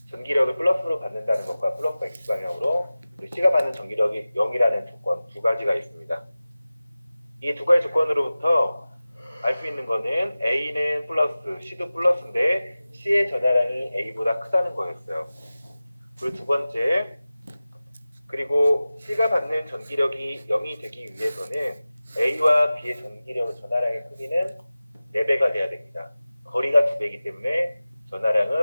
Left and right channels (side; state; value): both; inverted; correlation -0.97